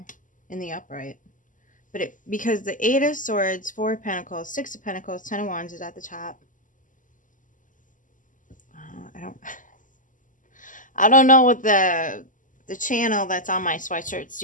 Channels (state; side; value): late; right; 0.38 ms